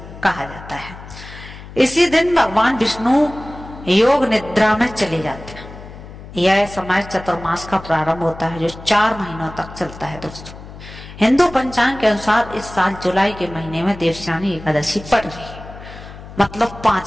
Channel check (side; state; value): left; noise; hum, 15 dB below the sound